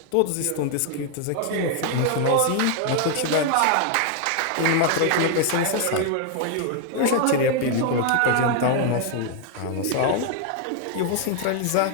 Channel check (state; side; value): different; both; correlation 0.00